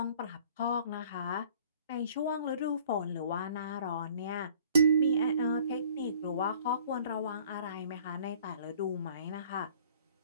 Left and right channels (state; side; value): inverted; both; correlation -0.53